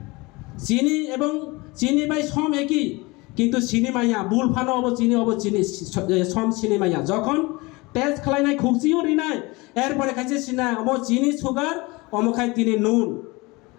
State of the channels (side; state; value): right; quieter; 24.1 dB